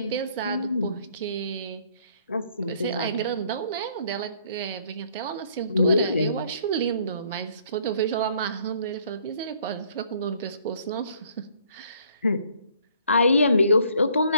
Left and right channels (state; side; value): inverted; both; correlation -0.62